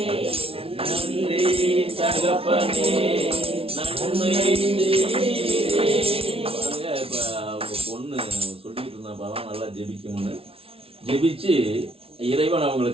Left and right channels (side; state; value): left; late; 0.27 ms